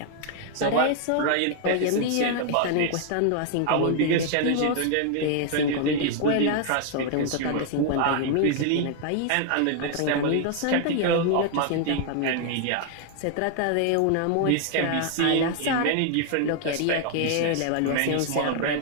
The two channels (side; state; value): both; different; correlation 0.00